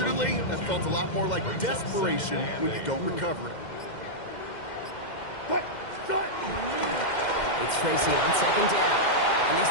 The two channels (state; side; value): late; right; 2.1 ms